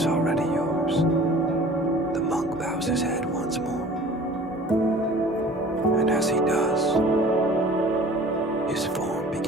already yours. The monk bows his head once more, and as he does, his form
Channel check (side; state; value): both; normal; correlation 0.46